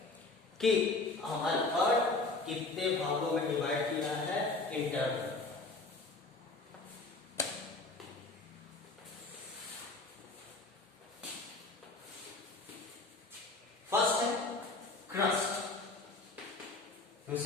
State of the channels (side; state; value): right; quieter; 3.4 dB